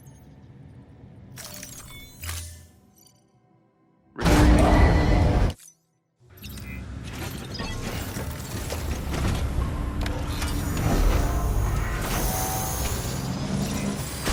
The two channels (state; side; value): identical; both; correlation 1.00